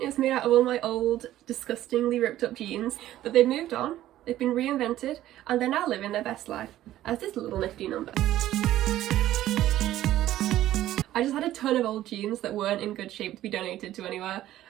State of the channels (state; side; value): quieter; left; 13.7 dB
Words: made out of all my old, disgustingly ripped up jeans, but they've moved on, they've been reinvented, and they're now living their best life as this little nifty number. I just had a ton of old jeans that weren't in good shape to be donated to anywhere,